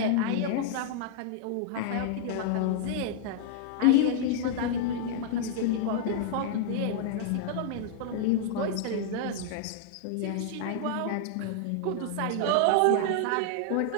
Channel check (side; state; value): both; different; correlation -0.01